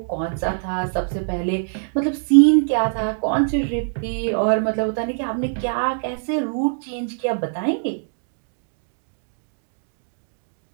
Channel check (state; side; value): silent; left; digital silence